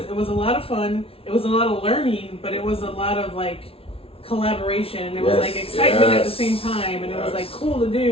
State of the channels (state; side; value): late; right; 0.27 ms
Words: was a lot of fun. It was a lot of learning, but it was a lot of like collaboration, and it was Yes. like excitement at the Yes. same time, and it was Yes. like cool to